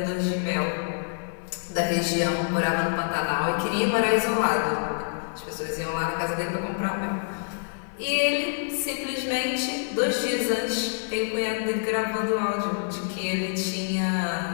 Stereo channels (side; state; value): right; silent; 60 dB below the other